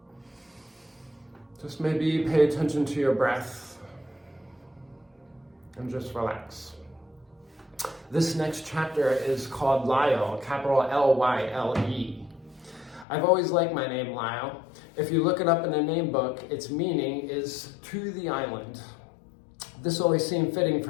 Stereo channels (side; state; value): right; drops out; at 13.1 s